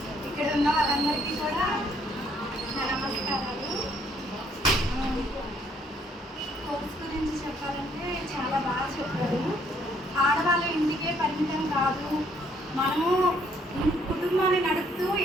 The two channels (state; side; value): normal; both; correlation 0.66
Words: ఇక్కడ ఉన్న వాళ్ళందరికీ కూడా నా నమస్కారాలు. కోర్స్ గురించి చెప్పాలంటే చాలా బాగా చెప్పారు. ఆడవాళ్ళు ఇంటికే పరిమితం కాదు, మనము కుటుంబాన్ని నడుపుతూ